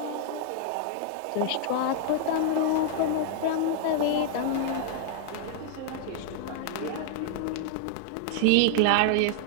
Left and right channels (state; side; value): different; both; correlation 0.00